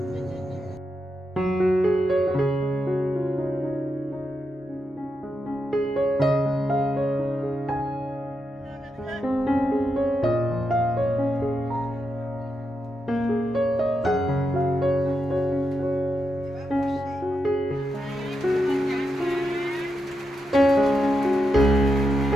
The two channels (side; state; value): both; normal; correlation 0.85